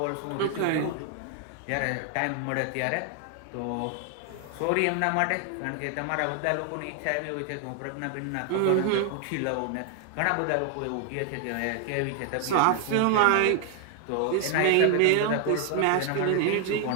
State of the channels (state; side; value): different; both; correlation 0.00